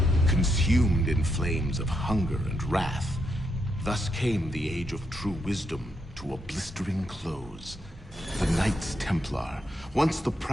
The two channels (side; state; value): both; normal; correlation 0.80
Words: Consumed in flames of hunger and wrath, thus came the Age of True Wisdom to a blistering close. The Knights Templar, once the